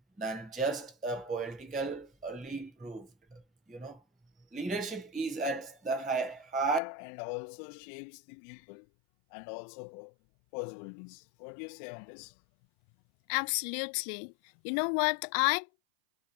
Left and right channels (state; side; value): drops out; right; at 6.8 s